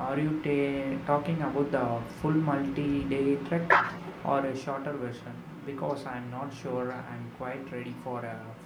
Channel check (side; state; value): both; identical; correlation 1.00